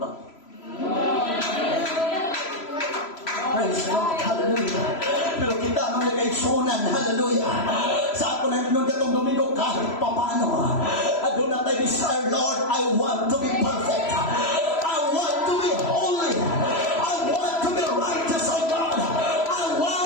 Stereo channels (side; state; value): right; late; 3.0 ms